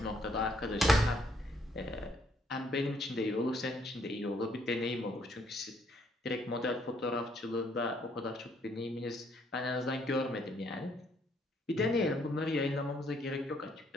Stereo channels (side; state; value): both; normal; correlation 0.68